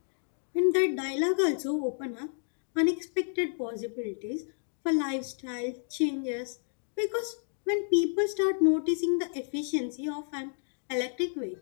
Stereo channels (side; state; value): right; silent; digital silence